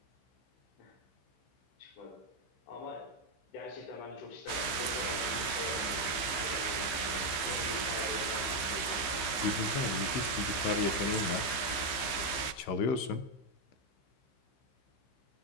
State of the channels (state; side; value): late; right; 15 ms